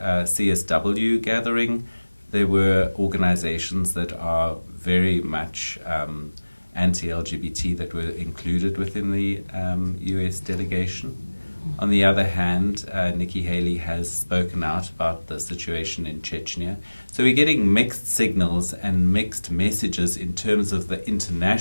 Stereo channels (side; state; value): both; inverted; correlation -1.00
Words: CSW gathering, there were organizations that are very much anti-LGBT that were included within the US delegation. On the other hand, Nikki Haley has spoken out about the situation in Chechnya. So we're getting mixed signals and mixed messages in terms of the